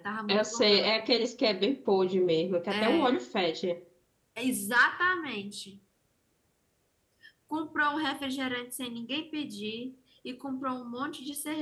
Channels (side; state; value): both; identical; correlation 1.00